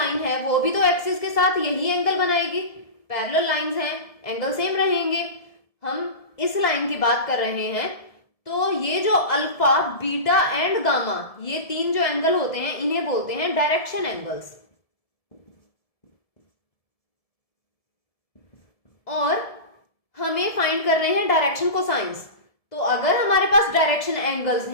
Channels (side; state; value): right; late; 1.7 ms